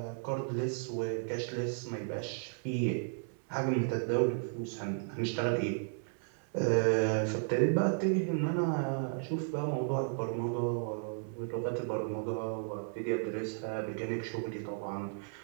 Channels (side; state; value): left; silent; 55 dB below the other